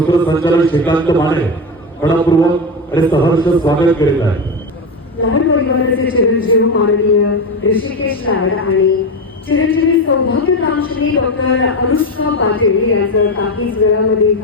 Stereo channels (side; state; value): both; normal; correlation 0.16